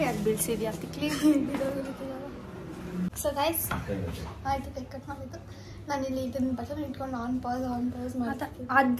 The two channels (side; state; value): both; identical; correlation 1.00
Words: ಯಾಕೆ ಬೀಳ್ಸಿದ್ಯಾ ತಿಕ್ಲಿ? ಸೊ ಗೈಸ್ ಆಯ್ತು, ಕೇಕ್ ಕಟ್ ಮಾಡಿದ್ದು. ನಾನು ಇಲ್ಲಿ ಇದನ್ನ ಬಟನ್ ಇಟ್ಕೊಂಡು ಆನ್ ಪಾಸ್ ಮಾಡ್ತೀನಿ.